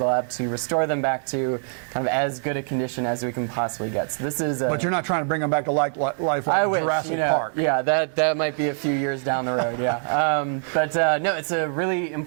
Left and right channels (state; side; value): silent; left; digital silence